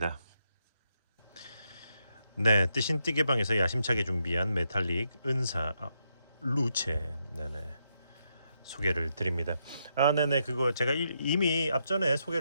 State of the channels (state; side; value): inverted; both; correlation -0.80